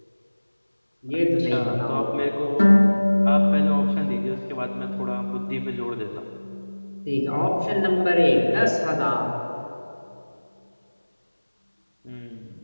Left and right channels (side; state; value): both; inverted; correlation -1.00